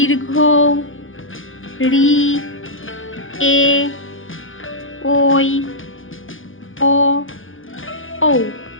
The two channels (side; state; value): right; late; 0.58 ms